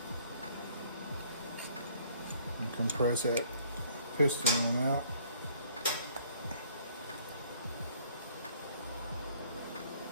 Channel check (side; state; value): both; inverted; correlation -0.60